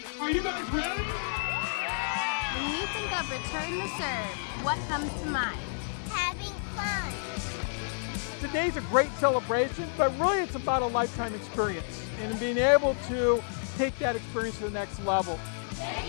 Are you guys ready? When you think of return to serve, what comes to mind? Having fun. Today's a great celebration, but really it's about a lifetime experience and being able to take that experience to the next level.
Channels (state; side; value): silent; right; 58 dB below the other